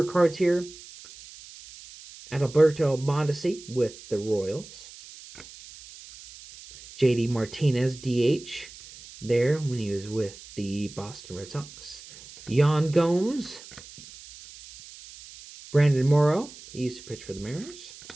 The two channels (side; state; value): right; noise; hiss, 18 dB below the sound